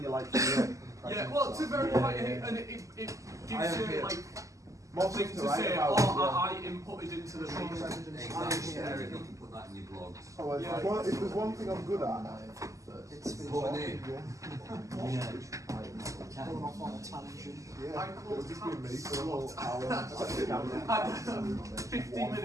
like yeah, well, to verify it, and it gives you like something to say, I inputted into the meeting. Exactly. You can put that in your blogs. Oh, if there's one thing I'm good at, It's putting in. Going off on a tangent. Yeah, I call it'll just be me tabs. for a whole hour. 15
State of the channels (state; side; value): late; left; 0.16 ms